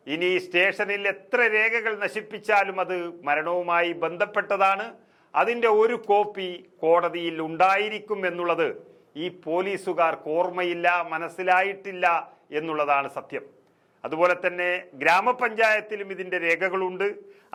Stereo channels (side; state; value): both; identical; correlation 1.00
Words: ഇനി സ്റ്റേഷനിൽ എത്ര രേഖകൾ നശിപ്പിച്ചാലും അത് മരണവുമായി ബന്ധപ്പെട്ടതാണ്. അതിൻ്റെ ഒരു കോപ്പി കോടതിയിൽ ഉണ്ടായിരിക്കും എന്നുള്ളത് ഈ പോലീസുകാർക്ക് ഓർമ്മയില്ല, മനസ്സിലായിട്ടില്ല എന്നുള്ളതാണ് സത്യം. അതുപോലെ തന്നെ ഗ്രാമപഞ്ചായത്തിലും ഇതിൻ്റെ രേഖകളുണ്ട്.